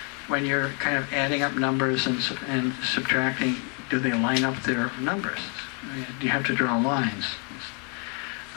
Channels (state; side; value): quieter; right; 35.3 dB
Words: when you're kind of adding up numbers and subtracting, do they line up their numbers? You have to draw lines.